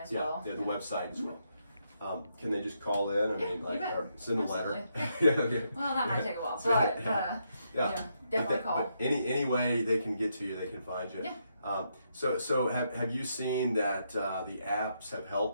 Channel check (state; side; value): inverted; both; correlation -0.79